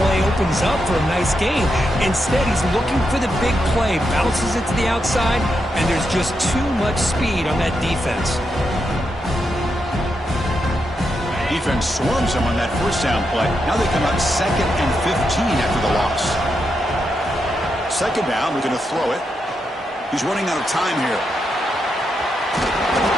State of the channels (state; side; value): normal; both; correlation 0.84